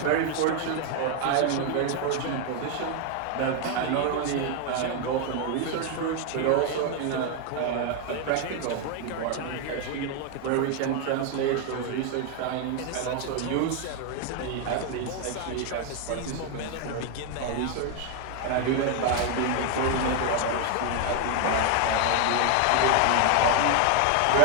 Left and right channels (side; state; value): both; different; correlation 0.01